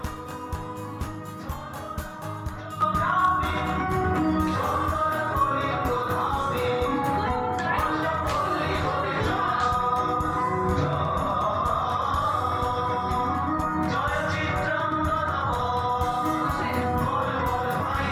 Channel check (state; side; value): identical; both; correlation 1.00